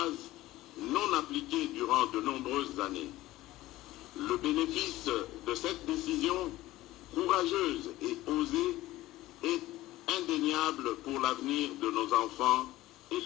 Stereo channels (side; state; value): right; quieter; 16.7 dB